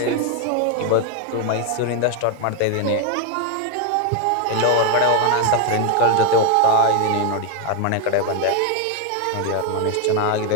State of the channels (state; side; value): different; both; correlation 0.01